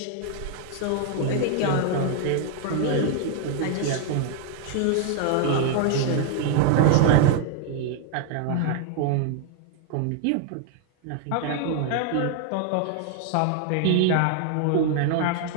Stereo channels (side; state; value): both; different; correlation 0.00